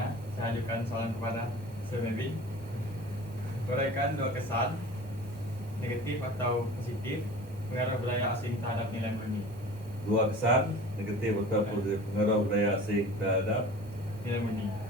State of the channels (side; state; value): both; normal; correlation 0.41